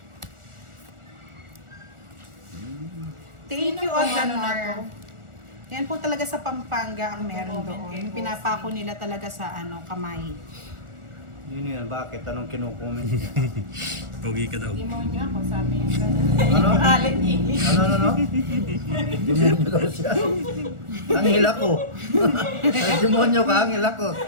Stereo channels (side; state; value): left; late; 1.4 ms